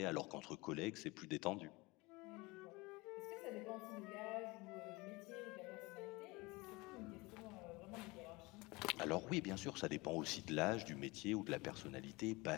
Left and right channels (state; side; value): quieter; right; 23.7 dB